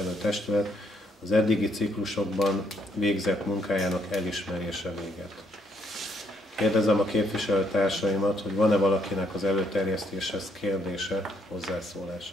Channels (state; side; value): normal; both; correlation 0.71